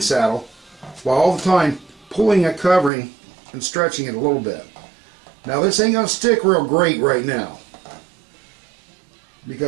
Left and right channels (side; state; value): left; drops out; at 2.9 s